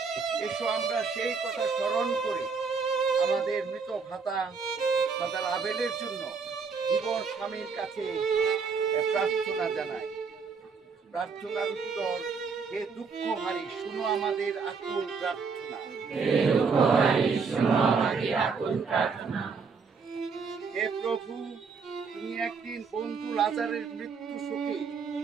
এসো আমরা সেই কথা স্মরণ করে আমাদের মৃত ভ্রাতা ফাদার আবেলের জন্য জীবন স্বামীর কাছে প্রার্থনা জানাই। প্রার্থনার উত্তর, হে দুঃখহারী, শুনো আমাদের আকুল প্রার্থনা। হে প্রভু, তুমি একদিন বন্ধু লাজারের মৃত্যু শোকে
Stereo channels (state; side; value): quieter; left; 5.2 dB